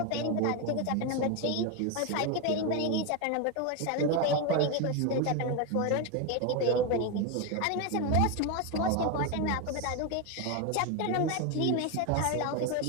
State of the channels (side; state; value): both; different; correlation 0.02